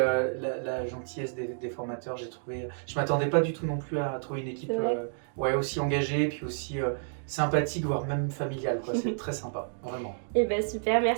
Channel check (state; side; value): silent; left; digital silence